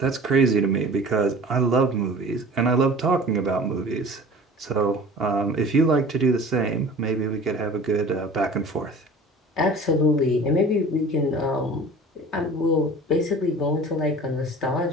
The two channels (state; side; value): normal; both; correlation 0.42